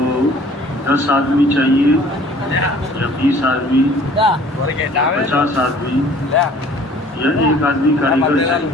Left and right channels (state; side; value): normal; both; correlation 0.52